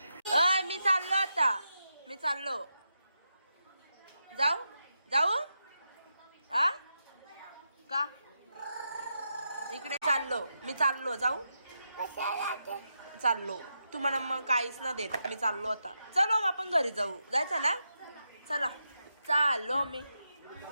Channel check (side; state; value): both; inverted; correlation -0.86